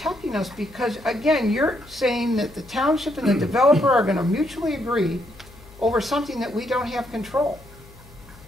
us, because, again, you're saying that the township and the developer are going to mutually agree over something that we don't have control.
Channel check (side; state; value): left; noise; hum, 22 dB below the sound